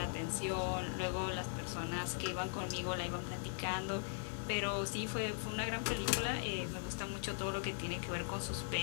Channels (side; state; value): right; silent; digital silence